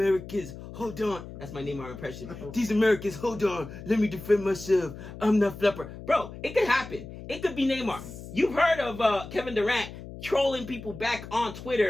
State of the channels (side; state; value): left; noise; hum, 13 dB below the sound